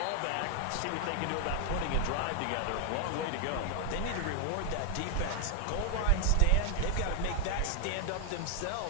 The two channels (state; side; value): different; both; correlation 0.00